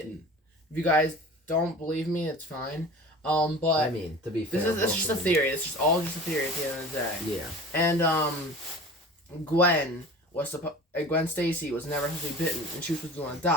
If you guys don't believe me, it's fine. But I mean, to be fair, this is just a theory. It's just all just a theory at the end of the day. Yeah. And Gwen Stacy was never supposed to be bitten, and she was supposed to be the one that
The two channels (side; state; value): both; normal; correlation 0.40